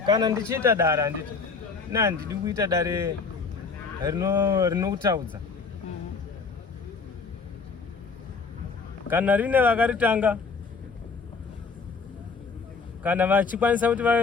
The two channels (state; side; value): quieter; right; 4.8 dB